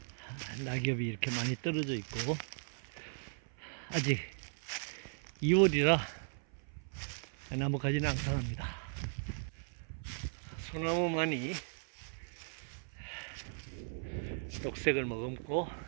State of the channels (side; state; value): left; silent; 53 dB below the other